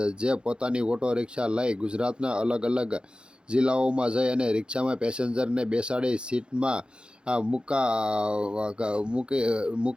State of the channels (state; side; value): late; left; 0.052 ms